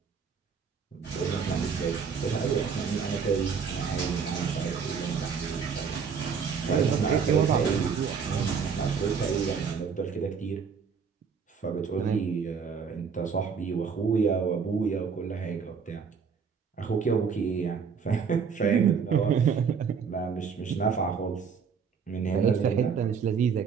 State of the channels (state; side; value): quieter; left; 6.2 dB